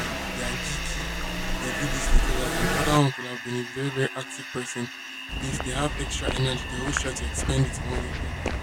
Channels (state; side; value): identical; both; correlation 1.00